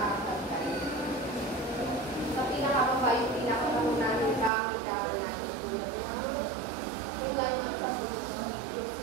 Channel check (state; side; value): drops out; left; at 4.5 s